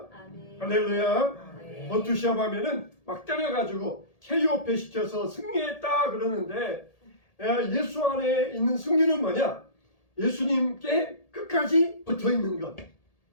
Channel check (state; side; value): late; right; 1.8 ms